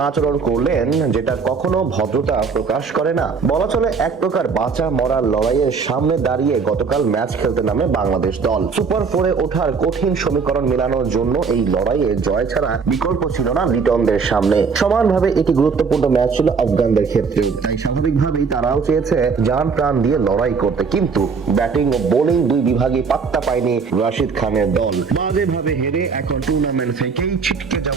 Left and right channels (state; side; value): quieter; left; 5.3 dB